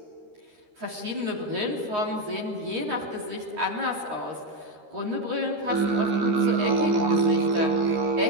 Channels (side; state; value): left; late; 13 ms